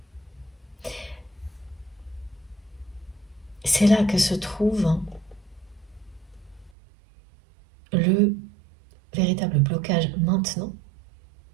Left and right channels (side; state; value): left; drops out; at 6.7 s